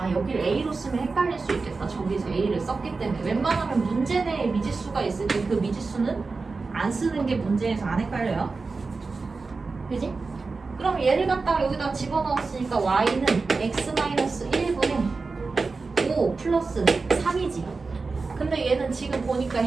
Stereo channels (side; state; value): left; quieter; 4.1 dB